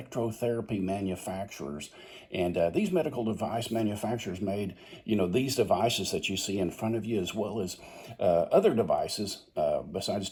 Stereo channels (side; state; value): both; identical; correlation 1.00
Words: manufacturers. And these medical device manufacturers made, these devices that you see in front of you, as well as other devices. Besides